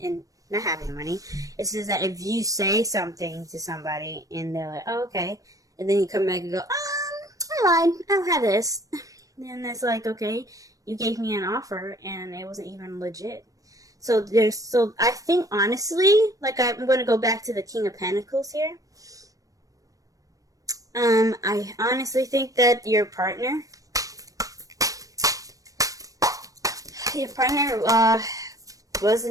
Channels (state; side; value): late; left; 0.16 ms